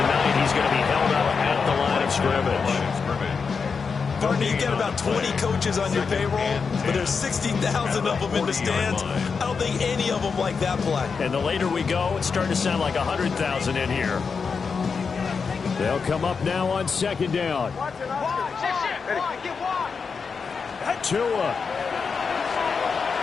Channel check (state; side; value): quieter; right; 5.4 dB